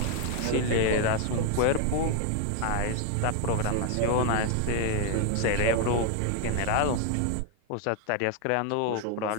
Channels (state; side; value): different; both; correlation 0.00